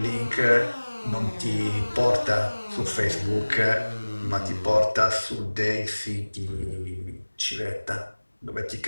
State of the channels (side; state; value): both; inverted; correlation -1.00